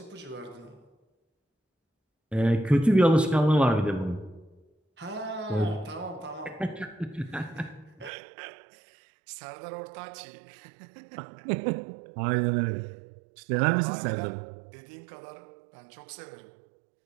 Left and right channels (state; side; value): drops out; left; at 8.1 s